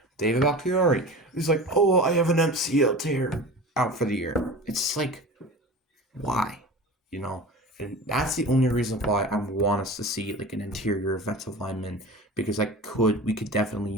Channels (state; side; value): normal; both; correlation 0.34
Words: David Bakhtiari is like, oh, I have an MCL tear, out for the year. It's like, why? You know? And that's the only reason why I want us to see like an interior offensive lineman, because we could definitely